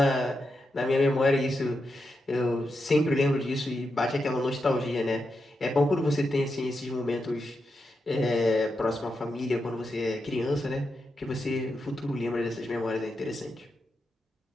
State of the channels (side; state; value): both; normal; correlation 0.86